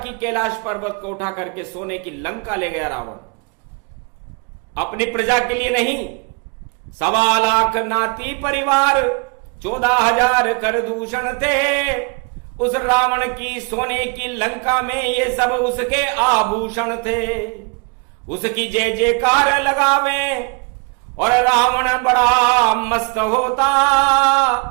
कैलाश पर्वत को उठा करके सोने की लंका ले गया रावण। अपनी प्रजा के लिए नहीं, 1.25 लाख नाती परिवार 14,000 कर दूषण थे। उस रावण की सोने की लंका में ये सब उसके आभूषण थे। उसकी जय जयकार लगावे और रावण बड़ा मस्त होता,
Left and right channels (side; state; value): left; quieter; 33.0 dB